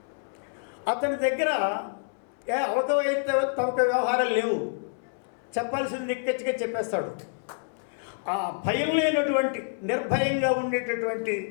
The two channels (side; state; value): right; silent; 60 dB below the other